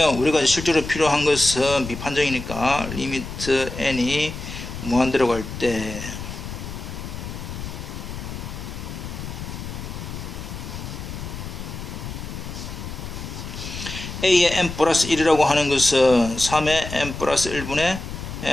우리가 실제로 필요한 것은 비판정이니까 리미트 n이 무한대로 갈 때 A의 n 플러스 1이라고 하는 것은 3의 n 플러스 1분의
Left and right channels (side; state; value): left; noise; rumble, 8 dB below the sound